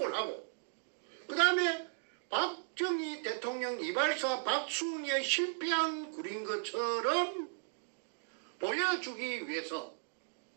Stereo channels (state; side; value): silent; left; digital silence